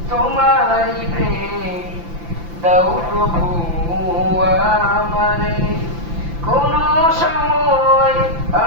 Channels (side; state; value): left; late; 5.9 ms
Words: তোমারি প্রেম দাও প্রভু আমারে। কোন সময়